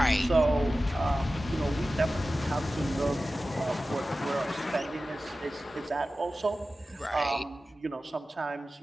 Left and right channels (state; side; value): normal; both; correlation 0.95